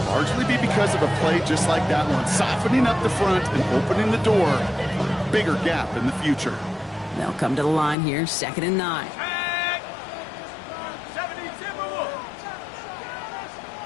largely be because of a play just like that one, softening up the front and opening the door. Bigger gap in the future. They'll come to the line here, 2nd and 9. Set. 70 Timberwolves.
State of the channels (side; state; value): right; drops out; at 8.0 s